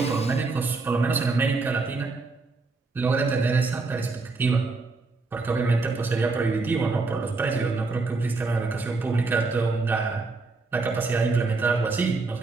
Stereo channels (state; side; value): quieter; left; 3.8 dB